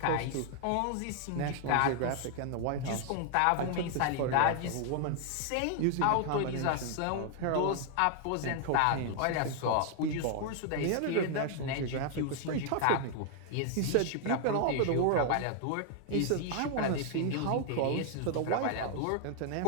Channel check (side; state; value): both; different; correlation 0.00